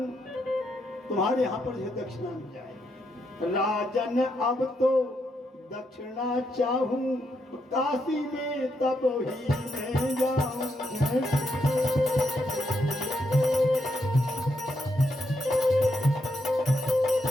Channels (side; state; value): both; normal; correlation 0.79